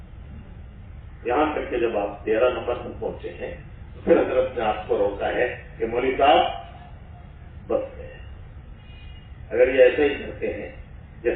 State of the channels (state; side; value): identical; both; correlation 1.00